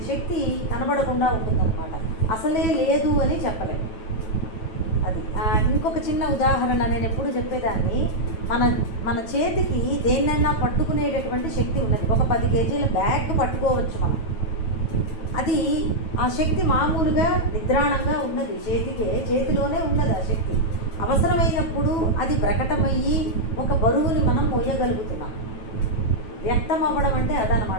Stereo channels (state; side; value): late; right; 9.2 ms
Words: శక్తి కనబడకుండా ఉంటుందన్నమాట. అసలే లేదు అని చెప్పలేము. అది ఇంకొక చిన్న ఉదాహరణ నేను ఎప్పుడు చెప్పేదాన్ని. మన చేతికి దేన్నైనా పట్టుకునేటటువంటి శక్తి ఉన్నది. ఒక 10 కేజీల బ్యాగ్ పట్టుకోవచ్చు మనం. అది ఆ శక్తి మామూలుగా నిద్రాణంగా ఉన్నది, చేతిలోనే ఉన్నది ఆ శక్తి. అవసరమైనప్పుడు అది ప్రకటమయ్యి ఒక బరువుని మనం మోయగలుగుతున్నాం. వ్యక్తం అవ్వడం అంటే